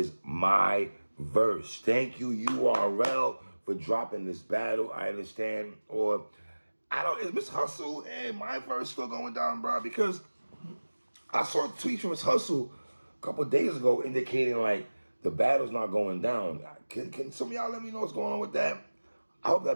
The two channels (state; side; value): inverted; both; correlation -1.00